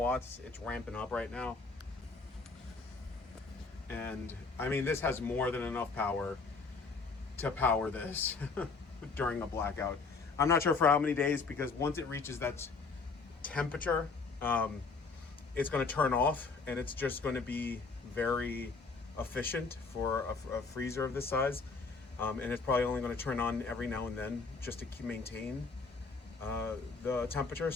It's ramping up right now. And I mean, this has more than enough power to power this during a blackout. I'm not sure for how many days, because once it reaches that temperature, it's going to turn off, and it's just going to be very efficient for a freezer of this size. And it's probably only going to turn on every now and then just to maintain the temperature.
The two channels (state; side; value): quieter; right; 4.4 dB